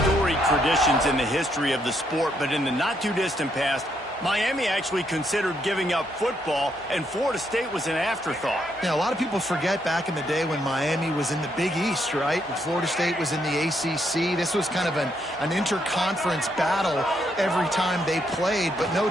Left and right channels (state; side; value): normal; both; correlation 0.75